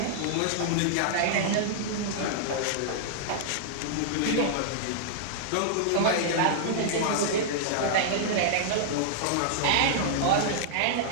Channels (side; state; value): both; different; correlation -0.02